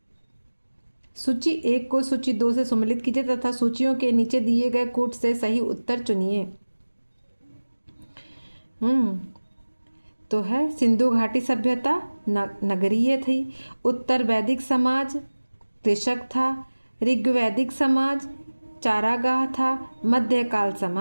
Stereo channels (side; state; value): both; inverted; correlation -1.00